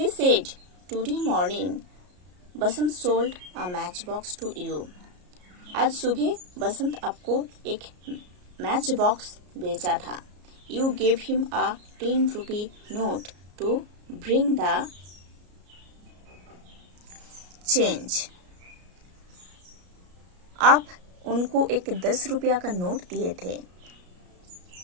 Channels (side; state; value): left; late; 33 ms